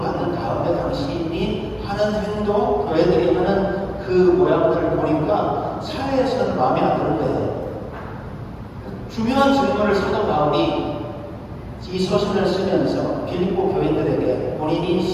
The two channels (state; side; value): identical; both; correlation 1.00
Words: 다음에 당신이 하는 행동, 교회들이 하는 그 모양들을 보니까 사회에서는 마음에 안 드는 거예요. 중요한 질문을 사도 바울이 이 서신을 쓰면서 빌립보 교인들에게 본인이